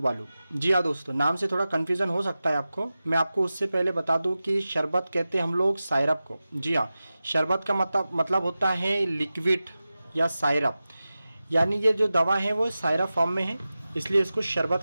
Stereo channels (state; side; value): inverted; both; correlation -0.95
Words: जी हाँ दोस्तों, नाम से थोड़ा कन्फ्यूज़न हो सकता है आपको। मैं आपको उससे पहले बता दूं कि शरबत कहते हैं हम लोग सायरप को। जी हाँ, शरबत का मतलब होता है लिक्विड या सायरप, यानी ये जो दवा है वो सायरप फॉर्म में है, इसलिए इसको